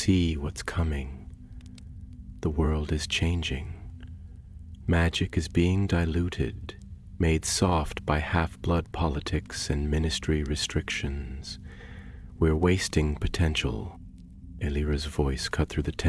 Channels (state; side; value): identical; both; correlation 1.00